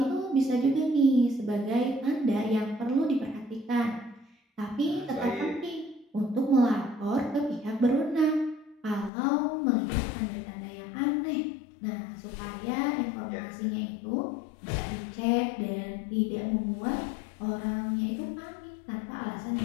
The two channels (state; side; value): drops out; right; at 9.1 s